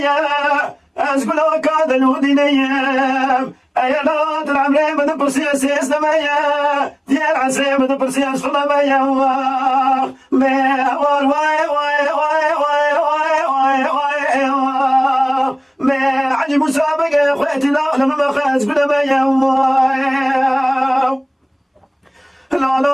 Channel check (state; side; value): identical; both; correlation 1.00